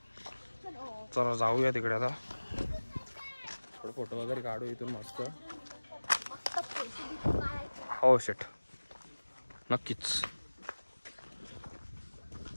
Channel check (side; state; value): both; inverted; correlation -1.00